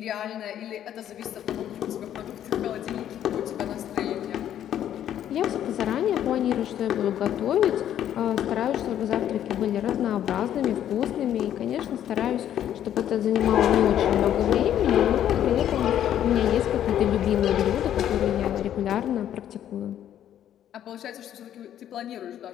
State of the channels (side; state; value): right; quieter; 10.8 dB